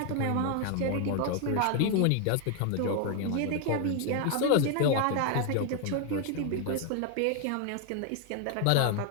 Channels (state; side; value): different; both; correlation 0.01